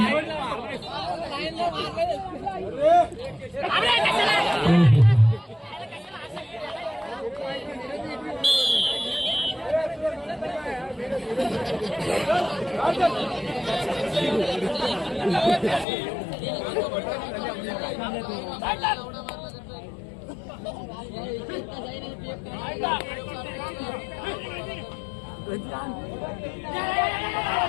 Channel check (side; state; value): right; drops out; at 15.9 s